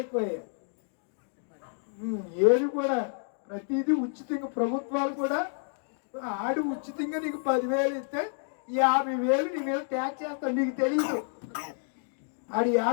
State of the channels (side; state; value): right; silent; 57 dB below the other